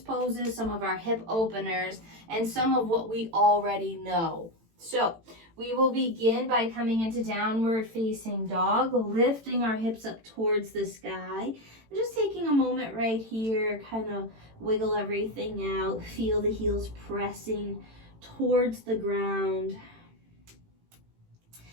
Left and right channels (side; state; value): left; late; 18 ms